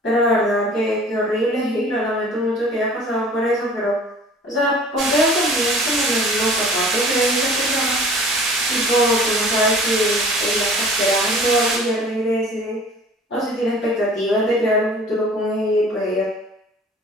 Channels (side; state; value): both; normal; correlation 0.47